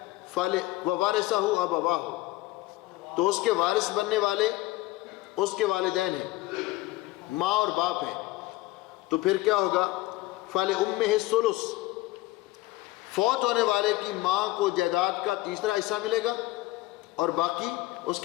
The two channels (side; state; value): right; quieter; 18.6 dB